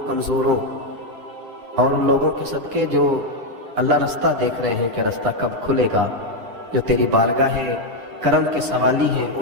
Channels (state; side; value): late; left; 9.8 ms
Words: کمزوروں اور ان لوگوں کے صدقے جو اللہ رستہ دیکھ رہے ہیں کہ رستہ کب کھلے گا، جو تیری بارگاہ کرم کے سوالی ہیں،